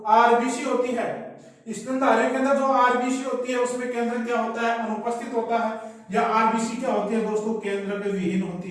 आरबीसी होती है स्तनधारी के अंदर जो आरबीसी होती है उसमें केंद्र क्या होता है, अनुपस्थित होता है। या आरबीसी क्या होती है दोस्तों, केंद्रक विहीन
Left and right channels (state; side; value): identical; both; correlation 1.00